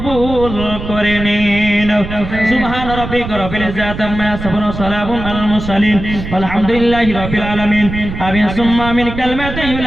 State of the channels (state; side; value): noise; right; rumble, 8 dB below the sound